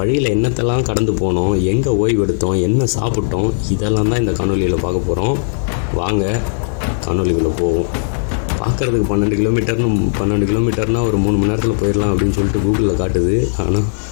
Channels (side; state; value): right; silent; digital silence